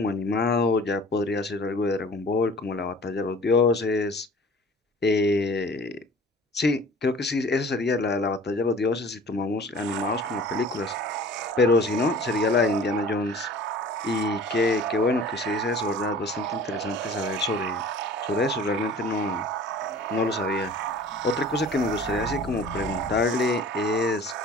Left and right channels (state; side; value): normal; both; correlation 0.45